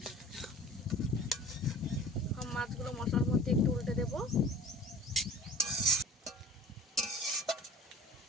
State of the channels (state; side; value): normal; both; correlation 0.43